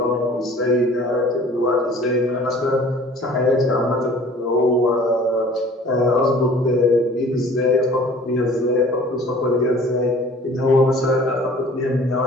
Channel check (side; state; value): both; normal; correlation 0.48